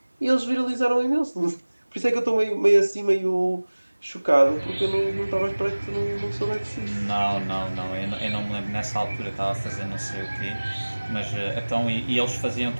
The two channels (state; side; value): inverted; both; correlation -1.00